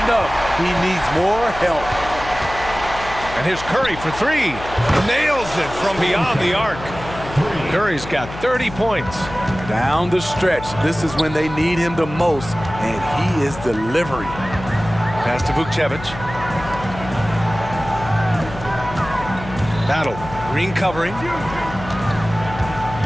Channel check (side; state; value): left; noise; hum, 12 dB below the sound